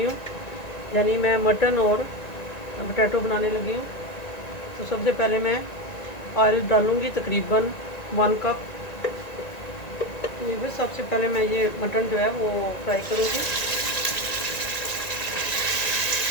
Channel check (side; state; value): right; late; 1.9 ms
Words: हूँ, यानी मैं मटन और पोटैटो बनाने लगी हूँ। तो सबसे पहले मैं ऑयल डालूँगी तकरीबन 1 कप। व्यूअर, सबसे पहले मैं ये मटन जो है वो फ्राई करूँगी।